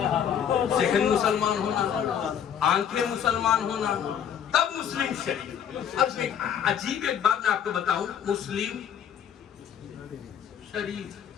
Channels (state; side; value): quieter; right; 8.8 dB